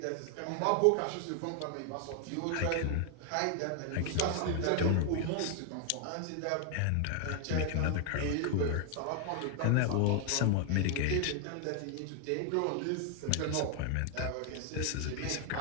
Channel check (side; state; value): both; different; correlation 0.00